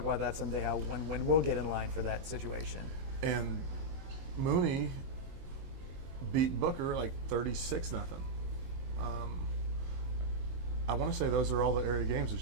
about that someday, when we'll get in line for that situation. And Mooney beat Booker like 36-0. I want to say those are all the area games.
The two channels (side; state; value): left; late; 22 ms